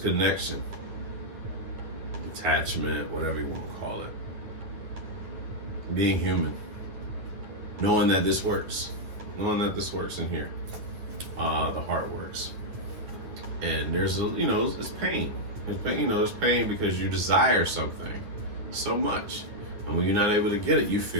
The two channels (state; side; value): late; left; 9.8 ms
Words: attachment, whatever you want to call it. Being human, knowing that this works in here. The heart works, and there's it's pain. There's pain because you desire something so much, and when you're not able to get it, you